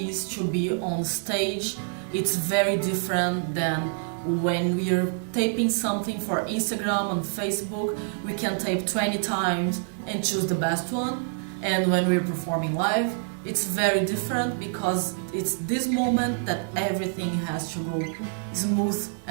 to be on stage. It's very different than when we are taping something for Instagram and Facebook. We can tape 20 times and choose the best one. And when we're performing live, it's very different because it's this moment that everything has to go smooth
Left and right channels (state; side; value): silent; left; digital silence